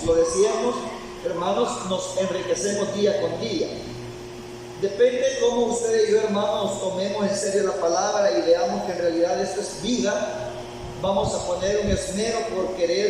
hermanos, nos enriquecemos día con día. Depende cómo ustedes y yo, hermanos, tomemos en serio la palabra y veamos que en realidad esto es vida. Vamos a poner un esmero por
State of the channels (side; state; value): both; identical; correlation 1.00